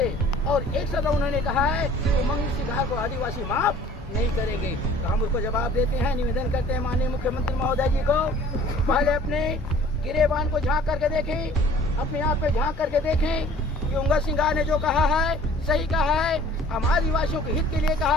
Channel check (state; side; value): normal; both; correlation 0.50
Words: और एक शब्द उन्होंने कहा है कि उमंग सिंगार को आदिवासी माफ नहीं करेंगे। तो हम उसको जवाब देते हैं, निवेदन करते हैं माननीय मुख्यमंत्री महोदय जी को, पहले अपने गिरेबान को झांक करके देखें, अपने आप पे झांक करके देखें कि उमंग सिंगार ने जो कहा है सही कहा है, हम आदिवासियों के हित के लिए कहा